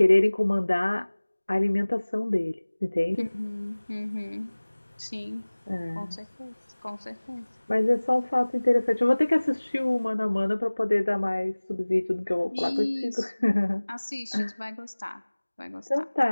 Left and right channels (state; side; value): inverted; both; correlation -1.00